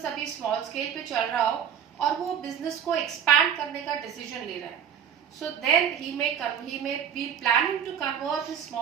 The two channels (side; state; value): left; quieter; 8.3 dB